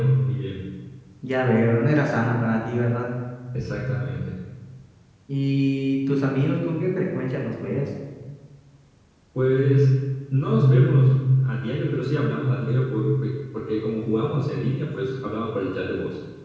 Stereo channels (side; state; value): both; identical; correlation 1.00